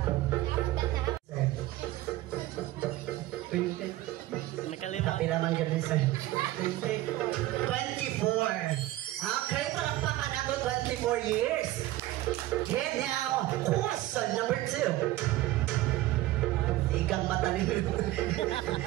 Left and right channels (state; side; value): quieter; left; 16.2 dB